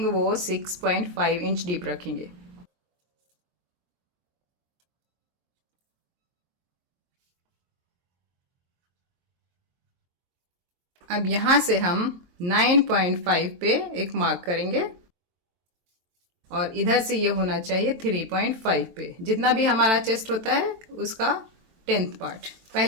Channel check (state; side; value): late; left; 22 ms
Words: वो 6.5 इंच डीप रखेंगे। अब यहाँ से हम 9.5 पे एक मार्क करेंगे, और इधर से ये होना चाहिए 3.5 पे। जितना भी हमारा चेस्ट होता है उसका 10th पार्ट।